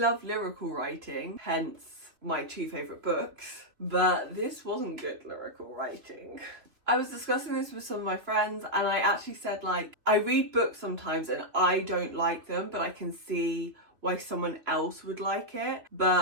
lyrical writing, hence my 2 favourite books, but this wasn't good lyrical writing. I was discussing this with some of my friends and I actually said, like, I read books sometimes and I don't like them, but I can see why someone else would like it.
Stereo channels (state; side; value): late; left; 3.2 ms